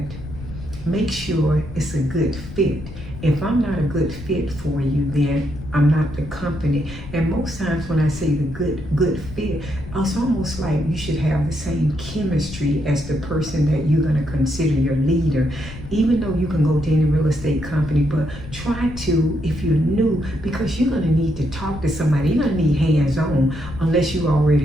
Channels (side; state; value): left; noise; rumble, 12 dB below the sound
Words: make sure it's a good fit. If I'm not a good fit for you, then I'm not the company. And most times when I say the good fit, it's almost like you should have the same chemistry as the person that you're going to consider your leader. Even though you can go to any real estate company, but try to, if you're new, because you're going to need to talk to somebody. You're going to need hands-on unless you're